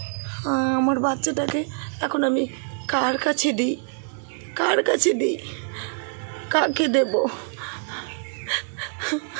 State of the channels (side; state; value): left; silent; 60 dB below the other